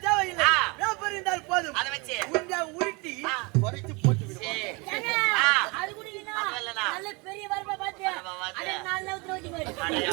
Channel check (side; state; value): left; quieter; 28.0 dB